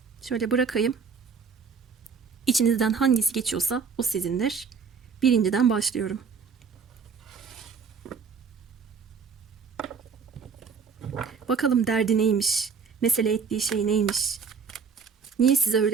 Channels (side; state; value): left; quieter; 5.9 dB